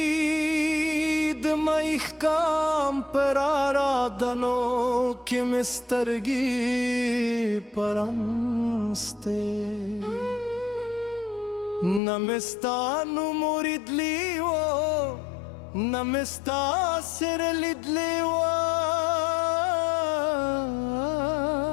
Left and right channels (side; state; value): right; drops out; at 12.0 s